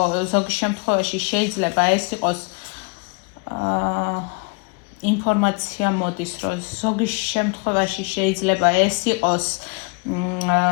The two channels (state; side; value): quieter; right; 32.0 dB